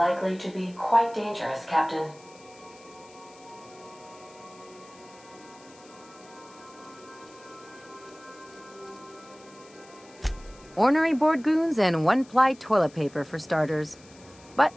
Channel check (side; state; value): left; noise; hiss, 24 dB below the sound